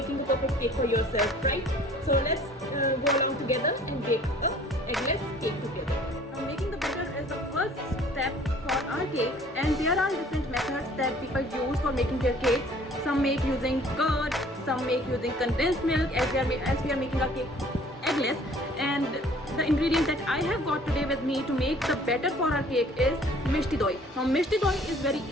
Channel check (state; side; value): normal; both; correlation 0.53